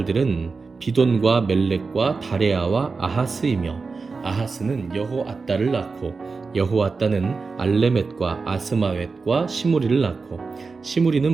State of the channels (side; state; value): left; quieter; 4.4 dB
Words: 비돈과 멜렉과 다레아와 아하스이며 아하스는 여호앗다를 낳고 여호앗다는 알레멧과 아스마웻과 시무리를 낳고